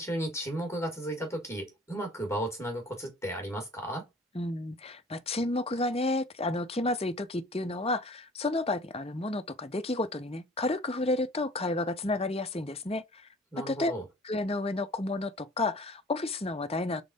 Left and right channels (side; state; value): both; normal; correlation 0.48